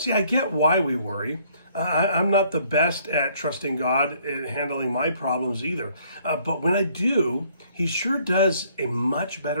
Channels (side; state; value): both; inverted; correlation -0.63